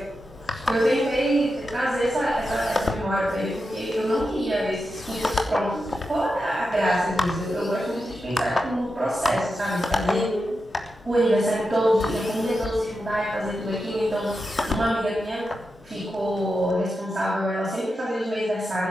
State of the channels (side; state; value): both; normal; correlation 0.89